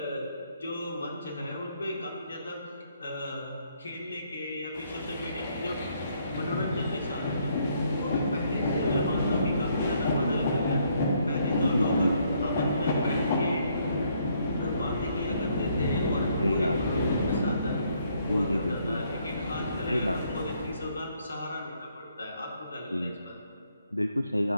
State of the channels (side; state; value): both; inverted; correlation -0.70